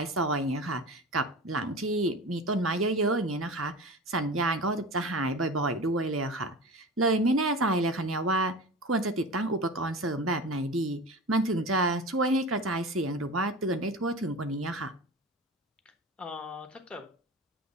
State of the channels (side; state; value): both; normal; correlation 0.32